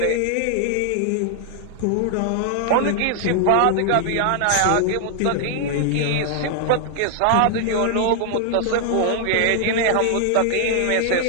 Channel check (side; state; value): both; different; correlation 0.00